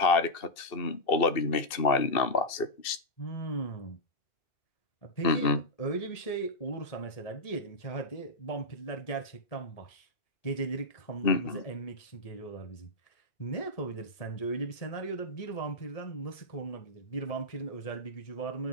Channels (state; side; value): late; right; 2.6 ms